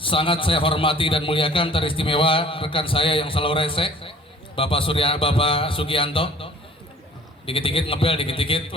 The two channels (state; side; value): normal; both; correlation 0.50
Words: saya hormati dan muliakan. Teristimewa rekan saya yang selalu rese, Bapak Sugianto, dikit-dikit ngebel, dikit-dikit